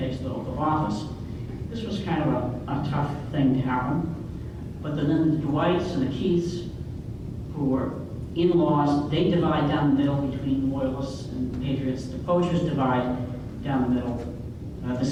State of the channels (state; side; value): identical; both; correlation 1.00